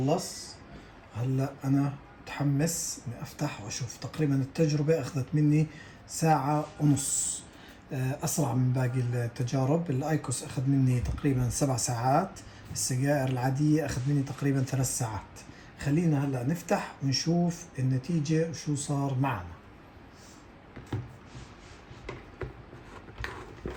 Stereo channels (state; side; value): identical; both; correlation 1.00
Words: هلا انا متحمس اني افتح واشوف. تقريبا التجربة اخذت مني 1.5 ساعة. اسرع من باقي التجارب. الايكوس اخذ مني تقريبا 7 ساعات. السجائر العادية اخذ مني تقريبا 3 ساعات. خلينا هلا نفتح ونشوف النتيجة وشو صار معنا.